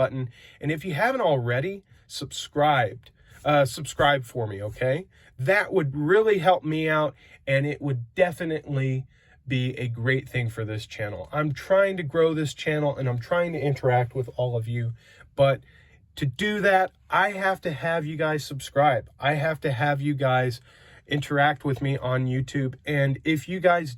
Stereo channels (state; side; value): identical; both; correlation 1.00